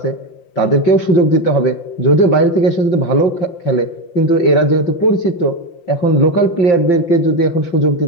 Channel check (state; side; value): late; right; 5.8 ms